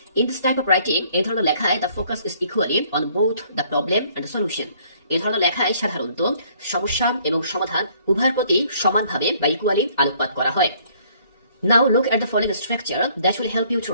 In this type of writing, এই ধরনের লেখায় the focus is equally on both the problem and the solution. এই ধরনের লেখায় সাধারণত সমস্যা এবং সমাধান উভয়ের প্রতি সমানভাবে বা ইকুয়ালি আলোকপাত করা হয়। Now look at the following structure that will help you to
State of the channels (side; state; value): both; inverted; correlation -0.61